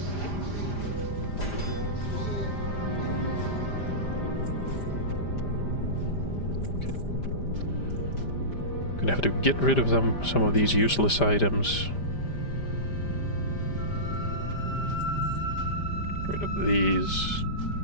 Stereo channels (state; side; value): late; right; 5.0 ms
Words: Gonna have to get rid of some of these useless items. Get rid of these.